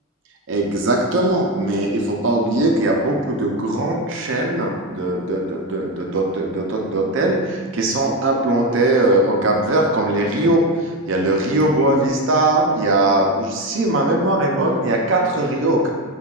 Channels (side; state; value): both; normal; correlation 0.13